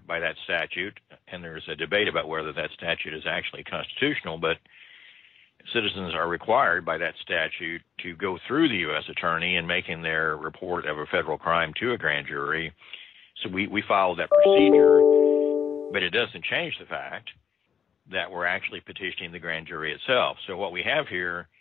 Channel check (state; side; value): quieter; right; 7.5 dB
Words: by that statute, and there's a debate about whether that statute is actually constitutional, but citizens are required by that statute to go through the U.S. Attorney in making their report of a federal crime to a grand jury. So we followed that procedure, but it doesn't change the fact that we're actually petitioning the grand jury itself. So what we have here